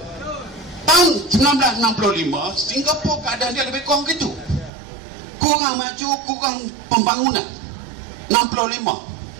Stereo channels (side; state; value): left; drops out; at 4.7 s